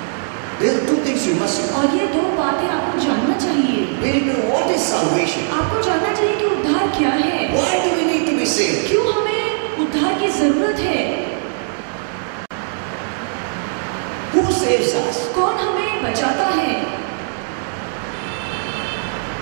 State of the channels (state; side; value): silent; left; digital silence